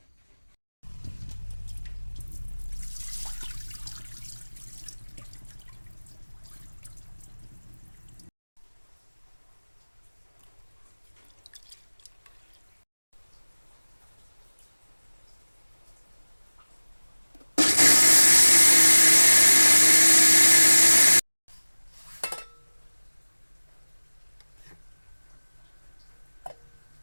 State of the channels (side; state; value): both; inverted; correlation -1.00